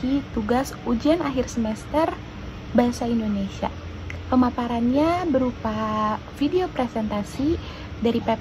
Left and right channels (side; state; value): both; identical; correlation 1.00